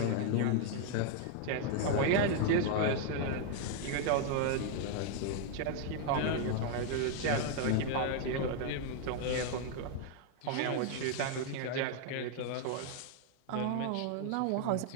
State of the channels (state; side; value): different; both; correlation 0.00